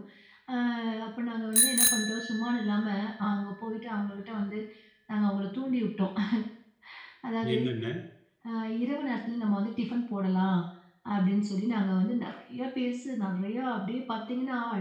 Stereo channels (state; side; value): identical; both; correlation 1.00